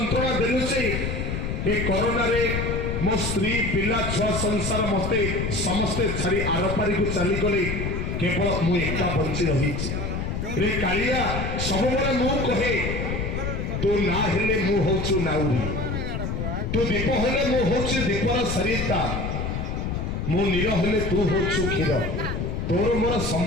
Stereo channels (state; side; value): noise; left; rumble, 2 dB below the sound